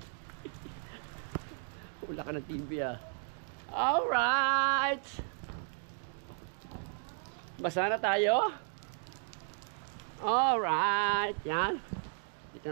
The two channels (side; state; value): left; silent; 55 dB below the other